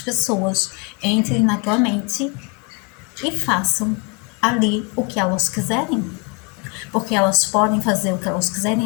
entrem na tua mente e façam ali o que elas quiserem. Porque elas podem fazer o que elas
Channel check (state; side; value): quieter; right; 32.6 dB